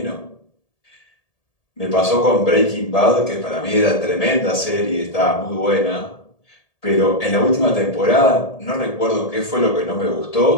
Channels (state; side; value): late; right; 1.8 ms